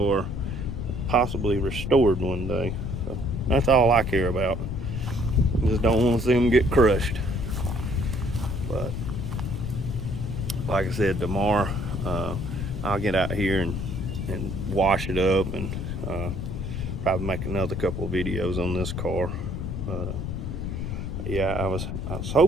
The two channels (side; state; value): left; noise; rumble, 4 dB below the sound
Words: possibly restored one day. So that's all I care about. Just don't want to see them get crushed. But like I said, tomorrow I'll get out here and wash it up, and probably make another couple of videos on this car. But yeah, I was